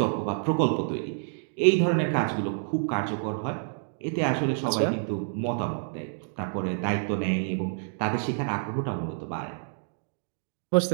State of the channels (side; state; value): left; silent; digital silence